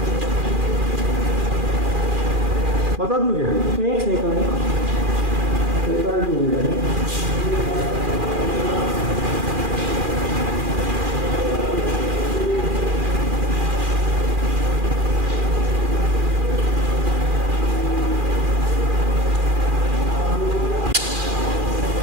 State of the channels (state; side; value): late; left; 2.4 ms